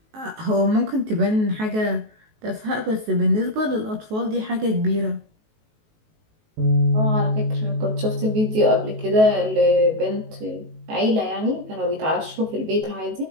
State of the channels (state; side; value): late; left; 19 ms